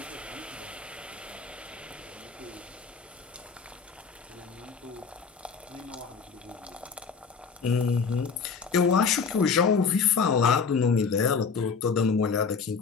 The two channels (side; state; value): right; quieter; 5.5 dB